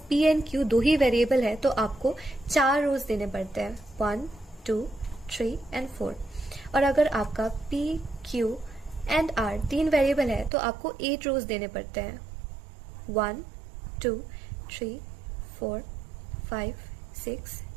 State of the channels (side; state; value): left; drops out; at 10.5 s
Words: P and Q 2 he variable है तो आपको 4 रोज देने पड़ते हैं, 1, 2, 3 एंड 4। और अगर आपका P, Q and R 3 variable है तो आपको 8 रोज देने पड़ते हैं, 1, 2, 3, 4, 5, 6,